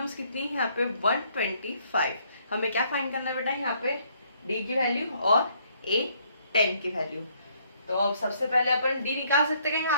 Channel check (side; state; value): both; inverted; correlation -0.67